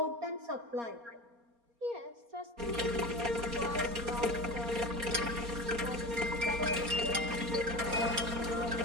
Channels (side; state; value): left; late; 4.3 ms